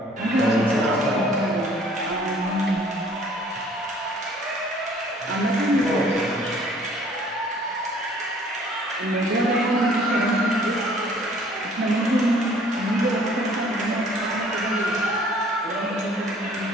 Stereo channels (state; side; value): normal; both; correlation 0.56